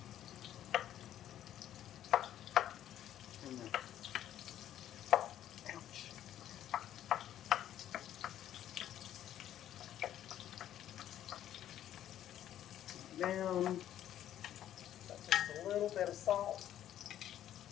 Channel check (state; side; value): quieter; right; 11.5 dB